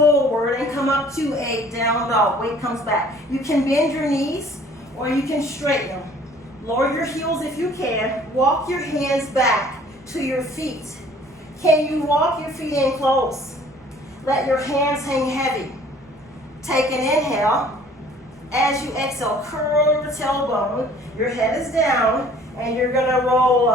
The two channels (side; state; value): right; noise; rumble, 30 dB below the sound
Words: and come up to a down dog. Weight comes back. You can bend your knees or you can straighten them. Lower your heels if you can. Walk your hands back to your feet. Can you walk your feet in close? Let your hands hang heavy. Take an inhale. As you exhale, curl your tailbone. Your head is down and you're going to roll